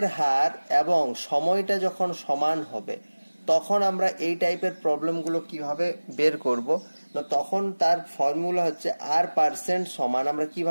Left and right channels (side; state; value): both; inverted; correlation -1.00